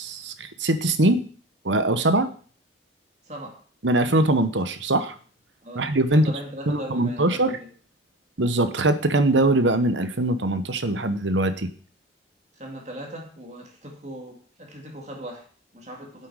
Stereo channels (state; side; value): normal; both; correlation 0.32